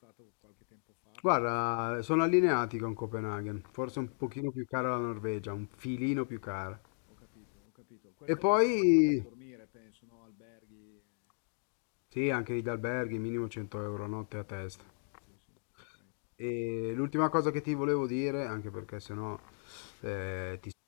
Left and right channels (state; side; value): silent; right; digital silence